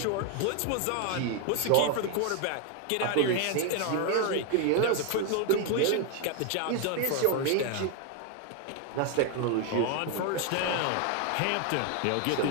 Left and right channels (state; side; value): different; both; correlation 0.01